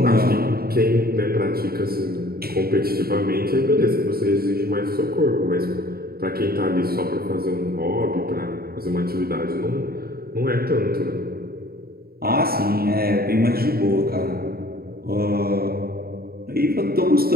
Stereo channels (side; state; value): left; late; 0.44 ms